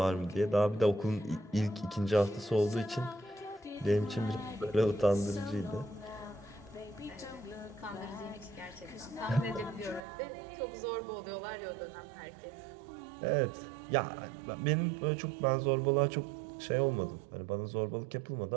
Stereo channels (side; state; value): left; drops out; at 10.0 s